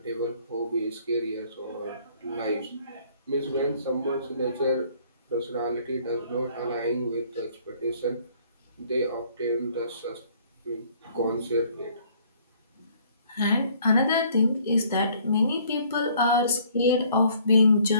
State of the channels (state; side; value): inverted; both; correlation -0.60